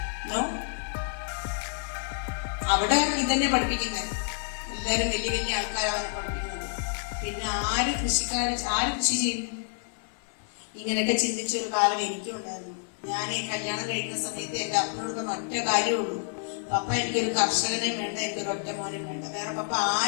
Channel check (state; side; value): silent; right; digital silence